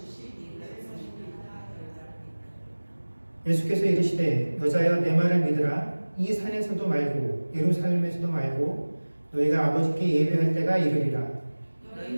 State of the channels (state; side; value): inverted; both; correlation -1.00